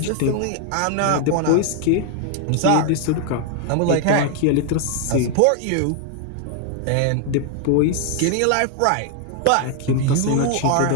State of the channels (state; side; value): different; both; correlation 0.00